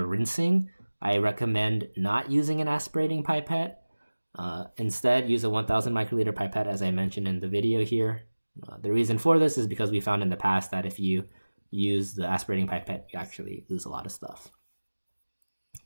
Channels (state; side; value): inverted; both; correlation -1.00